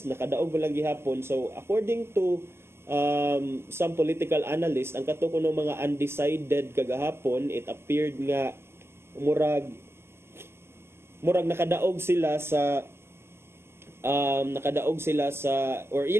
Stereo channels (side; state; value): left; late; 0.12 ms